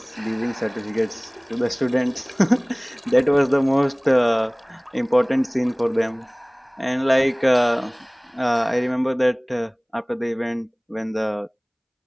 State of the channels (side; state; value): both; identical; correlation 1.00